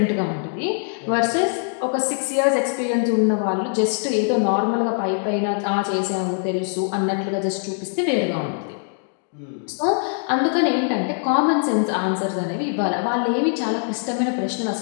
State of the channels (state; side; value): silent; right; 64 dB below the other